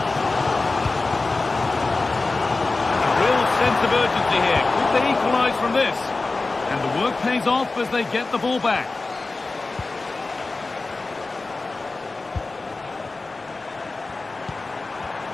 A real sense of urgency here. Could they equalise from this? And the work pays off as they get the ball back.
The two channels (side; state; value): right; quieter; 3.5 dB